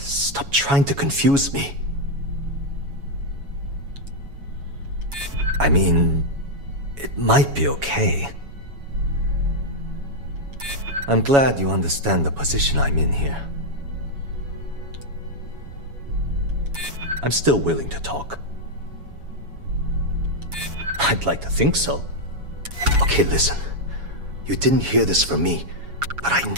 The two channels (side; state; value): left; late; 7.2 ms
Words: trying to confuse me. I mean, it might be okay. I'm glad you understand the position I'm in here. I'm still willing to talk. I'd like to think so. Okay, listen. You didn't hear this from me, but I